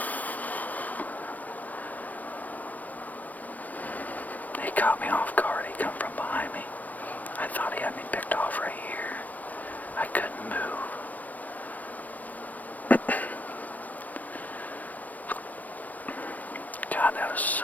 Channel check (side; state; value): right; late; 0.080 ms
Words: He caught me off guard. He come from behind me. I thought he had me picked off right here. I couldn't move. God, that was